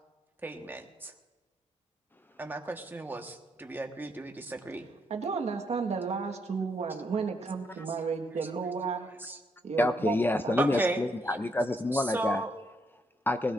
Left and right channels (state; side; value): normal; both; correlation 0.75